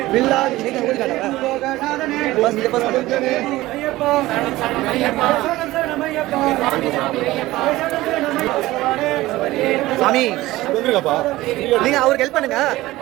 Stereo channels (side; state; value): left; quieter; 17.7 dB